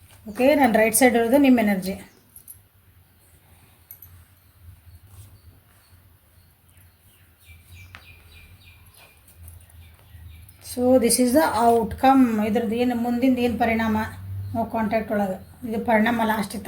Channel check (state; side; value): identical; both; correlation 1.00